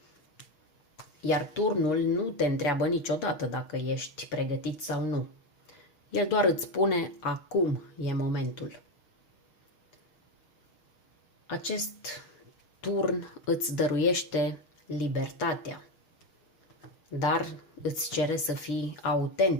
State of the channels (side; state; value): right; late; 6.4 ms